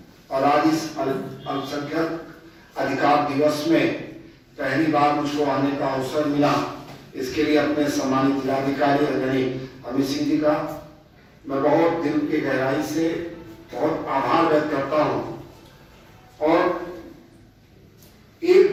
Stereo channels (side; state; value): both; identical; correlation 1.00